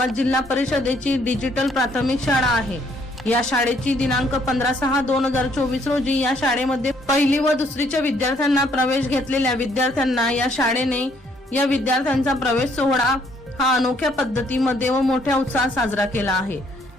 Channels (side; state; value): both; normal; correlation 0.67